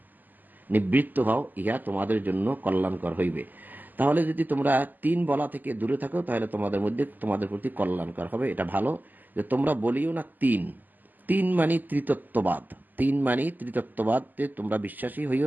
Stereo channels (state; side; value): late; left; 0.086 ms